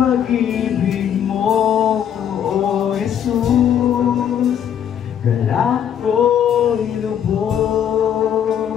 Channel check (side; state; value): right; quieter; 9.2 dB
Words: mo, O Jesus. Galak ko'y